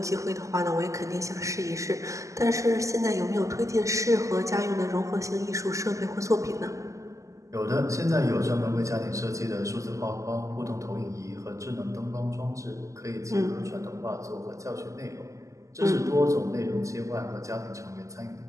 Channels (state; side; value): late; left; 0.16 ms